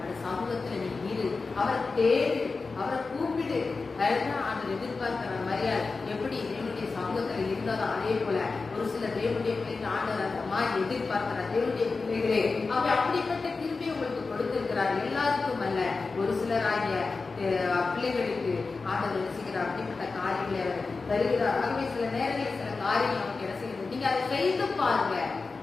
அந்த சமூகத்துல நீ இரு, அவரை தேடு, அவரை கூப்பிடு. அதுதான் ஆண்டவர் எதிர்பார்க்கிற மரியாதை. எப்படி தேவனுடைய சமூகத்துல இருந்தாலும் அதே போல ஒரு சில தேவனுடைய பிள்ளைகள் ஆண்டவர் அந்த மாதிரி எதிர்பார்க்கிற தேவனுடைய பிள்ளைகளே, அவர் அப்படிப்பட்ட திருப்பி உங்களுக்கு கொடுத்திருக்கிறார். எல்லாருக்கும் அல்ல, ஒரு சிலராகிய பிள்ளைகளுக்கு ஆண்டவர் ரசிக்கிறார். அப்படிப்பட்ட காரியங்களை அவர் தருகிறார். ஆகவே சில நேரங்களில் சில காரியங்கள் நமக்கு என்ன செய்யுது? நீங்க அதை செய்து பாருங்க,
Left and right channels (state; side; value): quieter; right; 4.1 dB